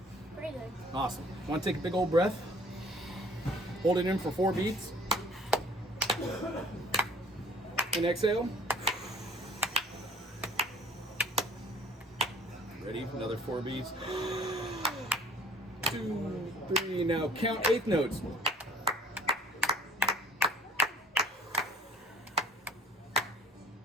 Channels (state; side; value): normal; both; correlation 0.52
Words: Pretty good. Awesome. Want to take a big old breath? Hold it in for 4 beats. And exhale. Ready? Another 4 beats. 2, 3. Now count 8th notes.